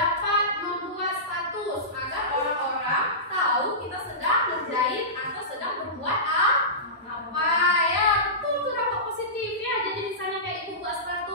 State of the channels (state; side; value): normal; both; correlation -0.20